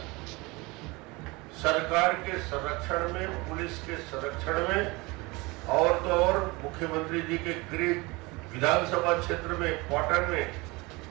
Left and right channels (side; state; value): left; quieter; 24.3 dB